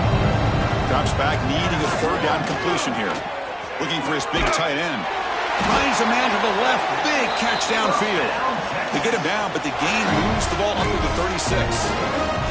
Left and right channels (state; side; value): identical; both; correlation 1.00